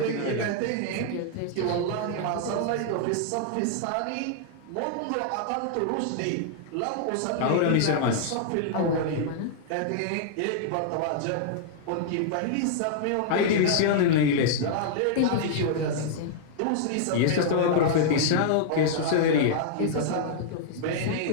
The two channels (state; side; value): different; both; correlation -0.01